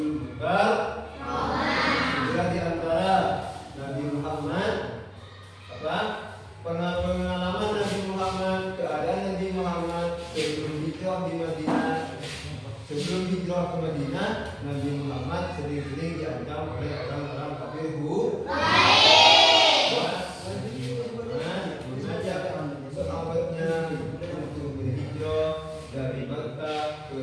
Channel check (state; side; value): identical; both; correlation 1.00